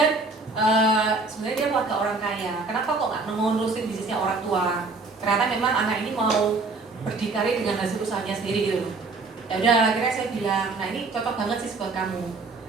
sebenarnya dia keluarga orang kaya. Kenapa kok nggak mau nerusin bisnisnya orang tua? Ternyata memang anak ini mau berdikari dengan hasil usahanya sendiri gitu. Ya udah, akhirnya saya bilang, nah ini cocok banget sih buat kamu.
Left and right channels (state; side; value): quieter; left; 3.8 dB